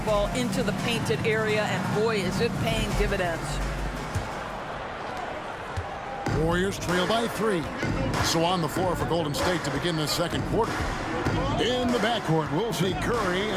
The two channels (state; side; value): identical; both; correlation 1.00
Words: into the painted area, and boy, is it paying dividends. Warriors trail by 3. So on the floor for Golden State to begin the second quarter. In the backcourt, we'll see Curry